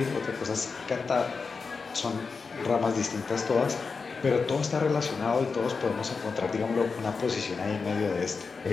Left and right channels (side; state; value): right; quieter; 4.8 dB